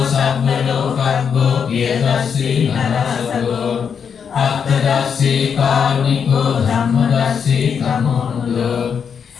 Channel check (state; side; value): quieter; right; 6.9 dB